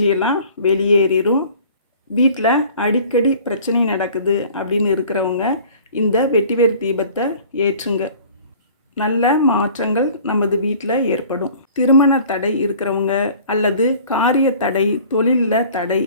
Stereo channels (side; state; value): both; inverted; correlation -0.48